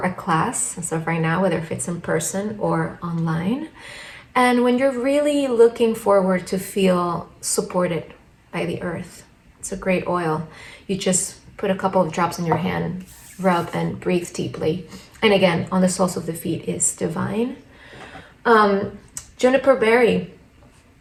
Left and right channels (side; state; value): both; identical; correlation 1.00